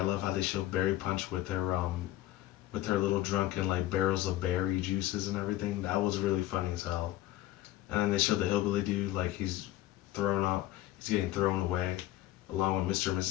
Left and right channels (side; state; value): right; quieter; 15.2 dB